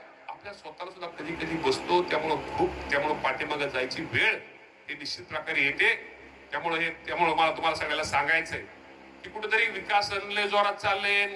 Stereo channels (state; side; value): identical; both; correlation 1.00